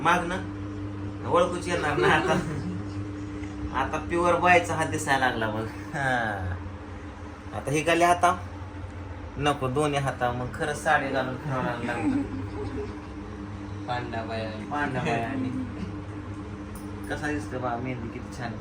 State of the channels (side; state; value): both; identical; correlation 1.00